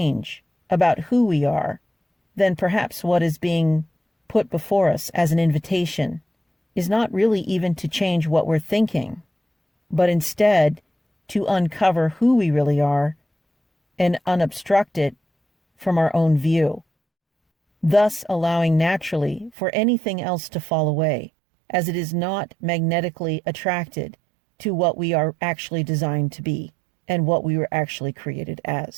about who we are, then perhaps what is being put before us as an invitation is not really even to change what we're thinking, but instead to uncover who we really are and unobstruct it from our own view, thus allowing naturally for anything else to fall away, as it is not magnetically attracted to what we are actually designed to be and what we were actually created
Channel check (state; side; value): drops out; left; at 19.5 s